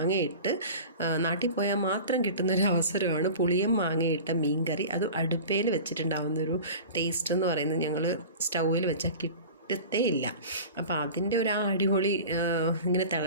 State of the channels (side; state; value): both; inverted; correlation -0.36